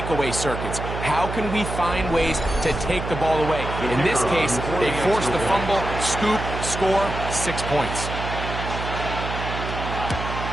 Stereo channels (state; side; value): noise; right; hum, 6 dB below the sound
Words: circuits. How can we find ways to take the ball away? In this case, they force the fumble, scoop, score, 6 points.